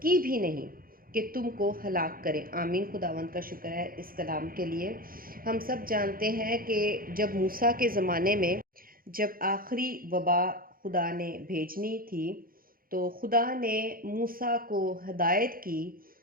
بھی نہیں کہ تم کو ہلاک کرے۔ آمین۔ خداوند کا شکر ہے اس کلام کے لیے۔ ہم سب جانتے ہیں کہ جب موسیٰ کے زمانے میں جب آخری وبا خدا نے بھیجنی تھی تو خدا نے موسیٰ کو ہدایت کی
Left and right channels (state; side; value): late; left; 0.42 ms